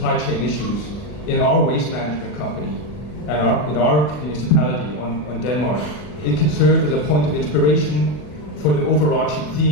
chain issues in our waste management company and in our municipality on Denmark, it can serve as a point of inspiration for the overarching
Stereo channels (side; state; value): right; late; 40 ms